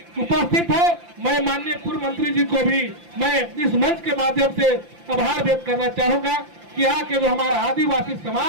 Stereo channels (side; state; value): left; late; 5.8 ms